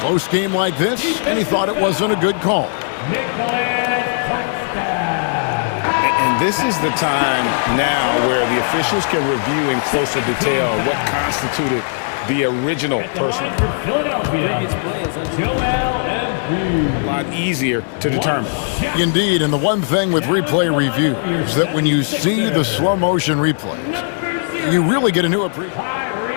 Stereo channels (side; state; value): right; silent; 64 dB below the other